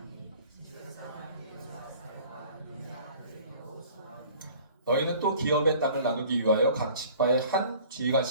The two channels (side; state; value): both; inverted; correlation -0.49